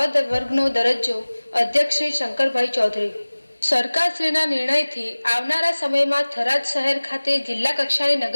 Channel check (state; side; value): inverted; both; correlation -1.00